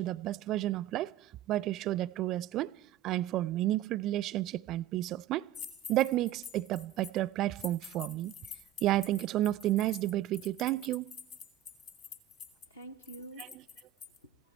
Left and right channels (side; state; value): left; quieter; 13.0 dB